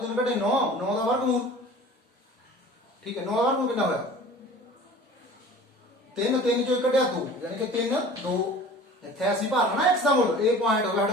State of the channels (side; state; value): both; normal; correlation 0.43